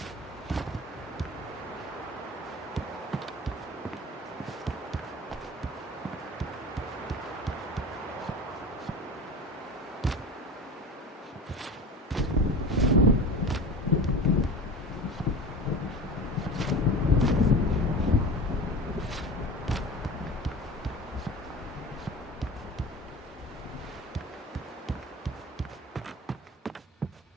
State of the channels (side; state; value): both; normal; correlation 0.33